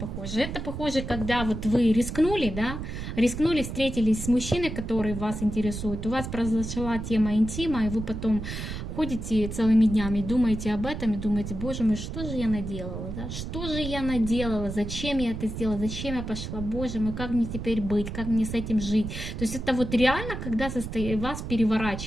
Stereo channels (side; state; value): right; noise; rumble, 6 dB below the sound